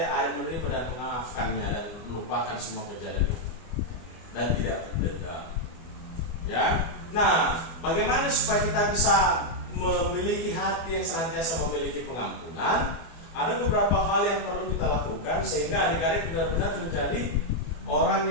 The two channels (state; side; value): late; right; 24 ms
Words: adik menerima dan memaafkannya dan melupakan semua kejadian itu dan tidak berdendam. Ya. Nah, bagaimana supaya kita bisa memiliki hati yang senantiasa memiliki pengampunan? Ada beberapa hal yang perlu kita lakukan sehingga adik-adik benar-benar menjadi orang